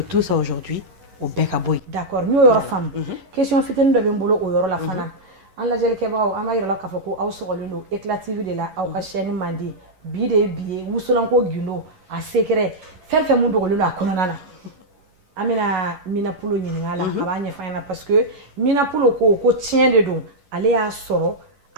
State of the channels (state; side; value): late; left; 11 ms